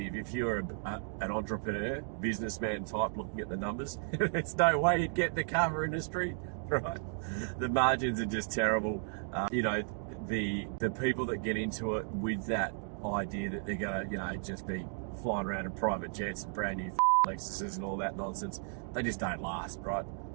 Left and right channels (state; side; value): silent; left; 55 dB below the other